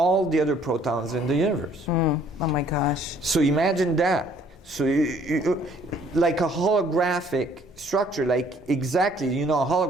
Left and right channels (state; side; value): normal; both; correlation 0.60